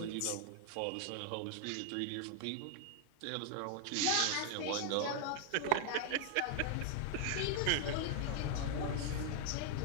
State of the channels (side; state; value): both; different; correlation 0.00